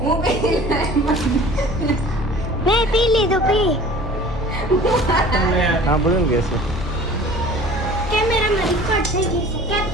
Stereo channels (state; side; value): normal; both; correlation 0.45